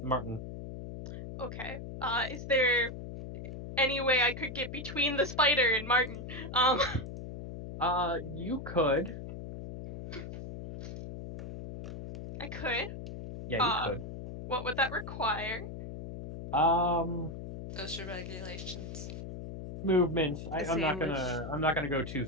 Martin. Okay. Is there any way I could get between the spider and Martin? You could. I could. Yeah, you could. What would that require? OSHA regulations. Movement. A I'm not sandwich. gonna go too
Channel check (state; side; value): noise; left; hum, 9 dB below the sound